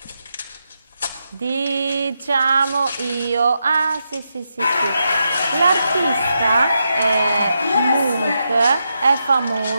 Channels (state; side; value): inverted; both; correlation -0.85